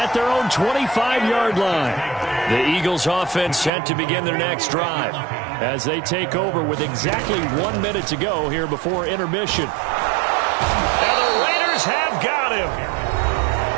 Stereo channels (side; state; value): left; drops out; at 3.7 s